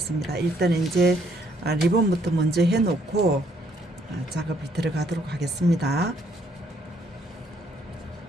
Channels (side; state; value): both; normal; correlation 0.68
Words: 일단 이제 리본부터 먼저 해놓고 작업이 들어가도록 하겠습니다.